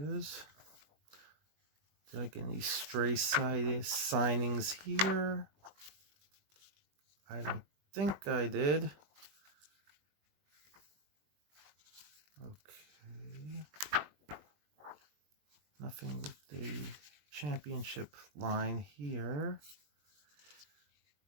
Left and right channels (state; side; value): late; left; 20 ms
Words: Did I get any stray signings here? I don't think I did. Okay. Nothing with the championship line here.